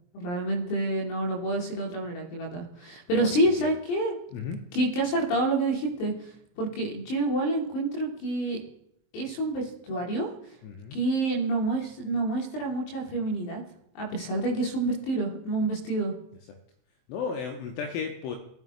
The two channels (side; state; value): right; late; 23 ms